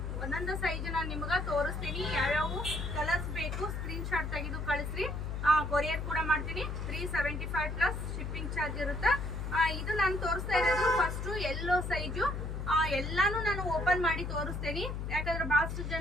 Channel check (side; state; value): left; noise; hum, 4 dB below the sound